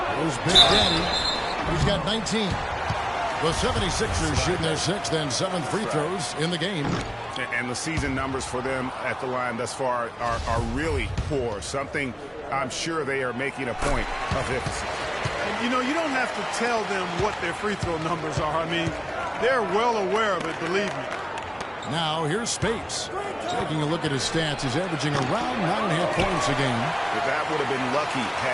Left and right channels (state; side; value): identical; both; correlation 1.00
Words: There's Big Daddy. He's got 19. The 76ers shooting their 6th and 7th free throws in the game. And the season numbers for them at the line thus far are really poor. Something I'm sure they are making a point of emphasis. You know, you don't have to tell them what their free throw numbers are. I mean, they're well aware of it, believe me. Now, here's Spates. Taking a look at his stats, he's averaging around 9.5 points a game. But that would have been lucky